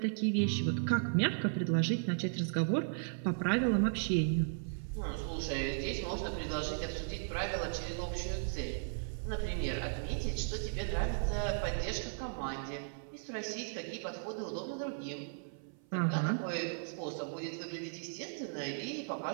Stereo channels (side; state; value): left; silent; 54 dB below the other